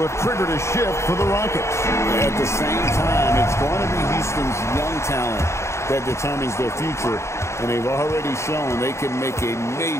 have triggered a shift for the Rockets. At the same time, it's going to be Houston's young talent that determines their future, and they've already shown they can make a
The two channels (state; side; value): late; right; 0.13 ms